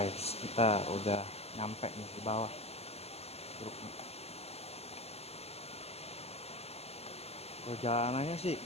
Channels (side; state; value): right; late; 0.30 ms